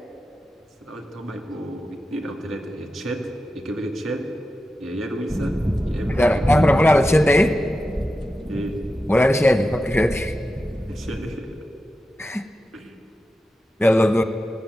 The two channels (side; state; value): both; normal; correlation 0.91